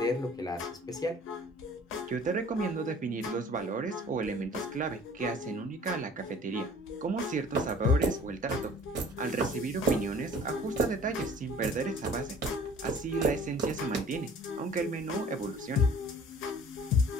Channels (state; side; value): normal; both; correlation 0.49